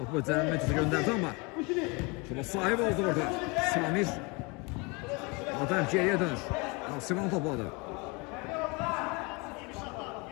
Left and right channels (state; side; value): quieter; right; 28.5 dB